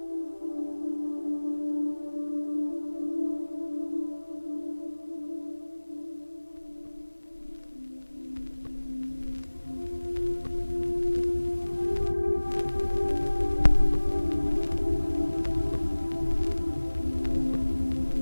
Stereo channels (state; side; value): inverted; both; correlation -1.00